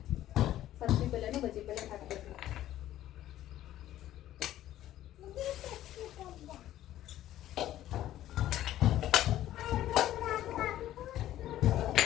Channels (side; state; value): right; quieter; 13.2 dB